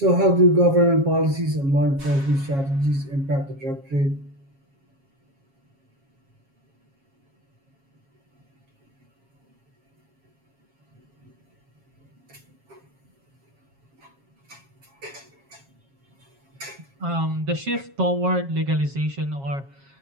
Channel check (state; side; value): late; left; 7.3 ms